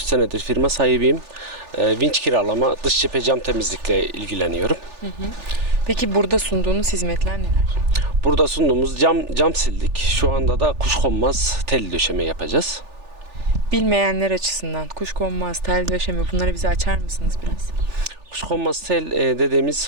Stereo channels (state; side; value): late; left; 3.4 ms